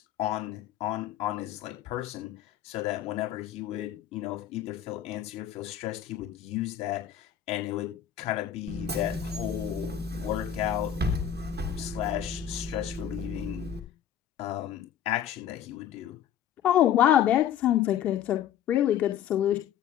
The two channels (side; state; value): right; quieter; 10.0 dB